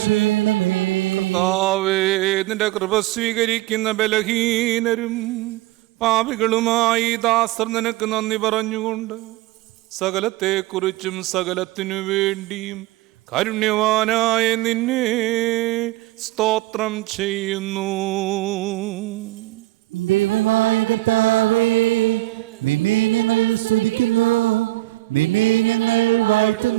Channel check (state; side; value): quieter; left; 18.5 dB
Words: ചെയ്യണമേ. കർത്താവേ, നിന്റെ കൃപ സ്വീകരിക്കുന്ന ബലഹീനരും പാപികളുമായി ദാസർ നിനക്ക് നന്ദി പറഞ്ഞുകൊണ്ട് സകലത്തെക്കുറിച്ചും സകലത്തിനു വേണ്ടിയും കാരുണ്യവാനായ നിന്നെ സ്തോത്രം ചെയ്യുന്നു. ദൈവമായ കർത്താവേ, നിന്നെ ഞങ്ങൾ സ്തുതിക്കുന്നു, നിന്നെ ഞങ്ങൾ